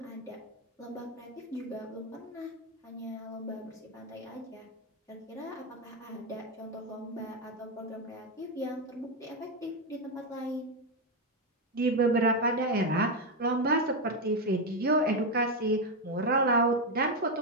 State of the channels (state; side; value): normal; both; correlation 0.07